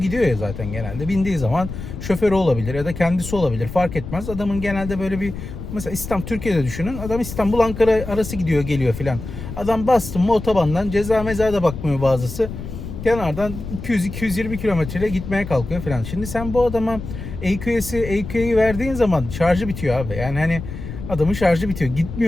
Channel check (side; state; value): left; noise; rumble, 9 dB below the sound